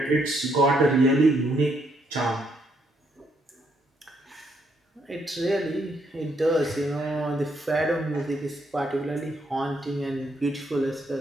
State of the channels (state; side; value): normal; both; correlation 0.74